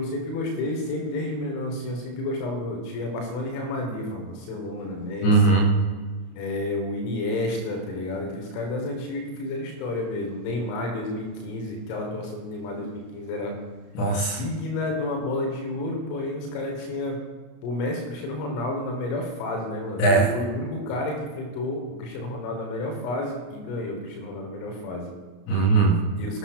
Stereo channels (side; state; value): right; late; 32 ms